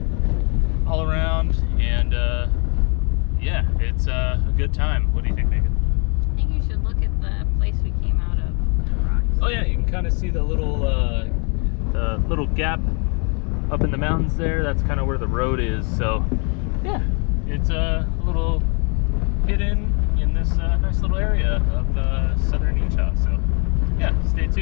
all around, and yeah, it's a good time. What do you think, Megan? I think you should look at the place we came out of, the rocks. Oh yeah, you can kind of see the little gap up in the mountains there. That's kind of where the road is. So yeah, it's a little hidden in this nice little area of southern Utah. So yeah, stay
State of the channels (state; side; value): quieter; right; 36.1 dB